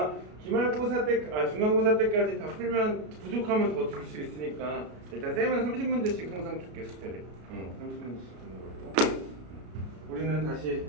기말고사 때, 중간고사 때까지 다 풀면 부족하면 더 줄 수 있으니까 일단 쌤은 30문제씩 항상 줄게, 숙제를. 30문제씩 주는 거고. 우리는 다시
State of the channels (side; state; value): left; late; 33 ms